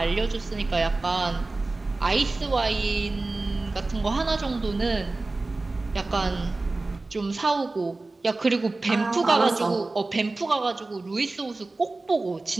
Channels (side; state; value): left; quieter; 3.3 dB